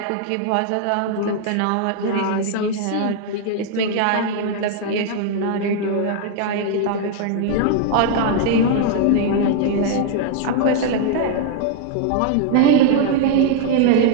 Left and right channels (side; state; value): both; different; correlation 0.00